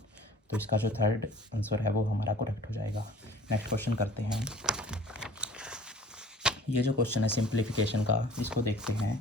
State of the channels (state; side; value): normal; both; correlation 0.48